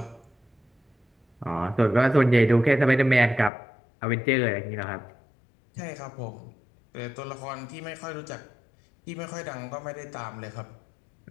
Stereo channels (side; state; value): right; drops out; at 3.5 s